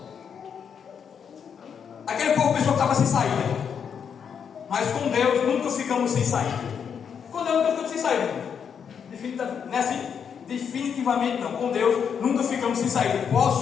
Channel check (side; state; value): right; quieter; 7.3 dB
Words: aquele povo pensou que estava sem saída, mas com Deus nunca ficamos sem saída. Com Deus nunca ficamos sem saída. Não é assim? Definitivamente não. Com Deus nunca ficamos sem saída.